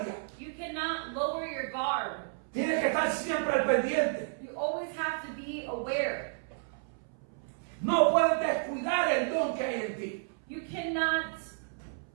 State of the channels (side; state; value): left; silent; 56 dB below the other